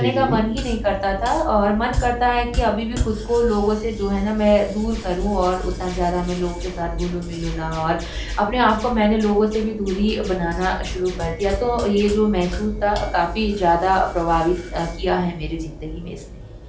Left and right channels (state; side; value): identical; both; correlation 1.00